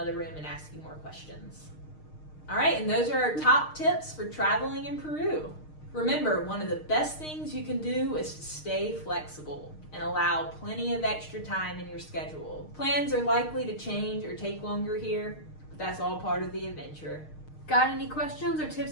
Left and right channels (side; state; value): right; late; 6.5 ms